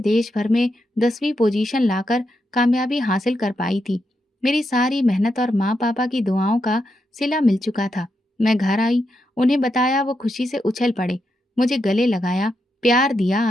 भर में 10वीं पोजीशन लाकर कामयाबी हासिल कर पाई थी। मेरी सारी मेहनत और माँ पापा की दुआओं का सिला मिल चुका था। मैं घर आई, उन्हें बताया, वो खुशी से उछल पड़े, मुझे गले लगाया, प्यार दिया,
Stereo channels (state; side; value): normal; both; correlation 0.84